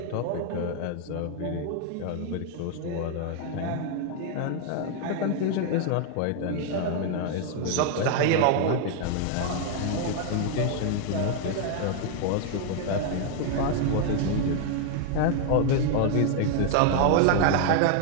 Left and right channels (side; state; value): both; different; correlation 0.00